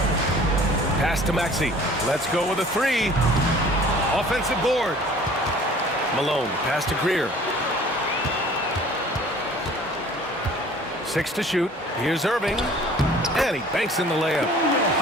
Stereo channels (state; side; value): normal; both; correlation 0.50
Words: Pass to Maxey. Let's go with a three. Offensive board. Malone, pass to Greer. 6 to shoot. Here's Irving. And he banks in the layup.